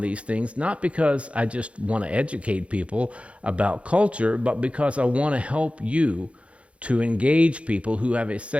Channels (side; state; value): left; late; 0.062 ms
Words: things, not because I just want to educate people about culture, but because I want to help you to engage people who have a